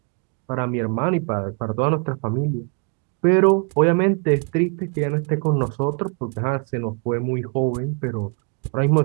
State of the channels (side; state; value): left; quieter; 37.5 dB